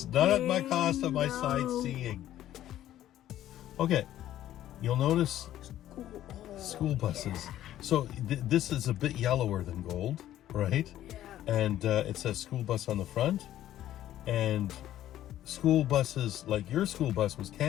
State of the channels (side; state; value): right; quieter; 12.7 dB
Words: not at my cost of my sightseeing. Okay, you'll notice School buses. So this is a bit yellower than gold, right? Yeah. And it says school bus on the front. And school buses, like your school bus was